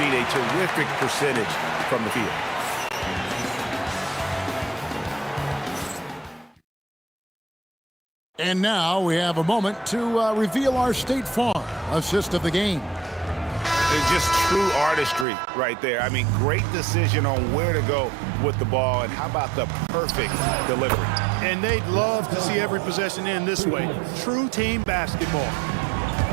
a terrific percentage from the field. And now we have a moment to reveal our State Farm assist of the game. It's just true artistry right there. I mean, great decision on where to go with the ball, and how about the perfect delivery. And they'd love to see every possession end this way. True team basketball.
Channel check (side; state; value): left; drops out; at 15.2 s